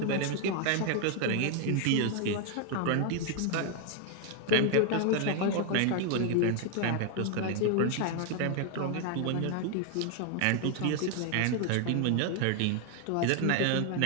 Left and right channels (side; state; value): both; different; correlation 0.00